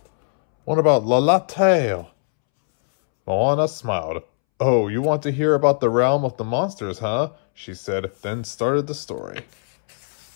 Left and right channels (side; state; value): right; silent; 65 dB below the other